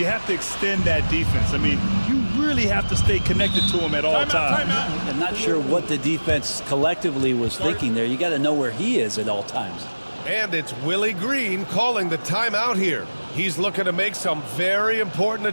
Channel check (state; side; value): inverted; both; correlation -1.00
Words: have to extend that defense. I mean, you really have to stay connected to him at all times. I'm not sure what the defense collectively was thinking there. You got to know where he is at all times. And it's Willie Green calling the timeout here. He's looking to make some very important